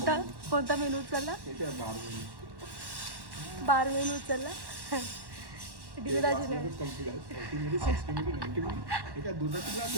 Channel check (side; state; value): left; late; 1.1 ms